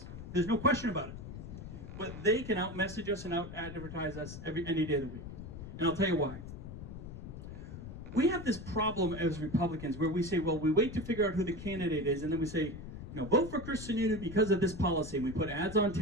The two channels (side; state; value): left; noise; rumble, 10 dB below the sound